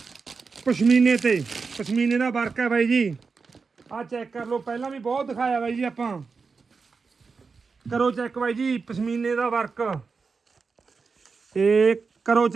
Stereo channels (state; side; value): quieter; left; 4.8 dB